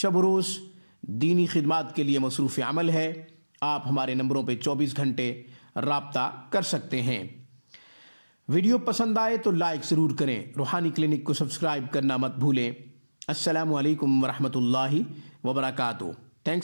و روز دینی خدمات کے لیے مصروف عمل ہے۔ آپ ہمارے نمبروں پہ 24 گھنٹے رابطہ کر سکتے ہیں۔ ویڈیو پسند آئے تو لائک ضرور کریں، روحانی کلینک کو سبسکرائب کرنا مت بھولیں۔ السلام علیکم ورحمۃ اللہ وبرکاتہ۔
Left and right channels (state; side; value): inverted; both; correlation -1.00